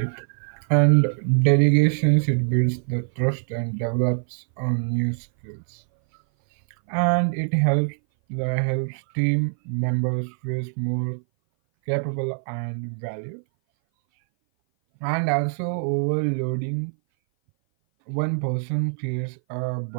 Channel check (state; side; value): silent; left; 59 dB below the other